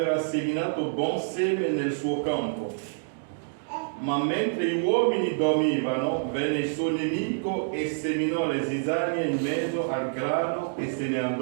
seminato buon seme nel suo campo. Ma mentre gli uomini dormivano, venne il suo nemico e seminò le zizzanie in mezzo al grano e se ne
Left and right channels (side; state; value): left; silent; digital silence